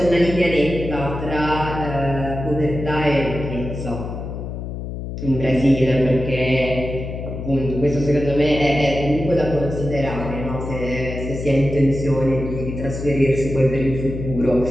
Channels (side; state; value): left; noise; hum, 7 dB below the sound